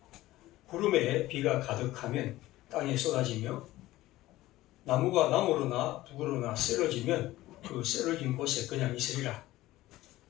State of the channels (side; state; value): right; quieter; 16.7 dB